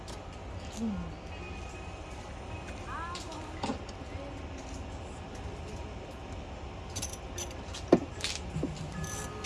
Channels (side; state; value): both; identical; correlation 1.00